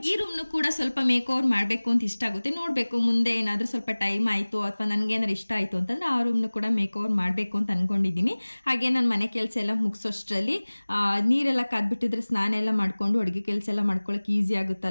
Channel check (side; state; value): both; inverted; correlation -1.00